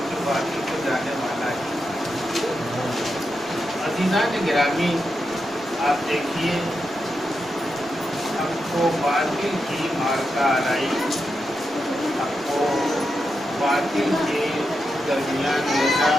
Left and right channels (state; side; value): normal; both; correlation 0.87